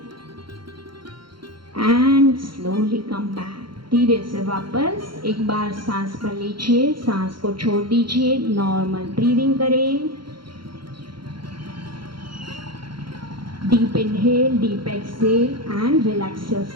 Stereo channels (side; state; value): left; late; 0.73 ms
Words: एंड स्लोली कम बैक, धीरे से वापस एक बार सांस भर लीजिए, सांस को छोड़ दीजिए, नॉर्मल ब्रीदिंग करें। Deep inhale, deep exhale and relax